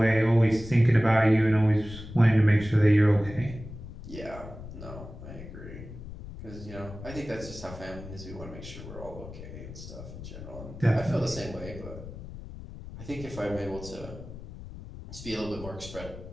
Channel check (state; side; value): noise; left; rumble, 13 dB below the sound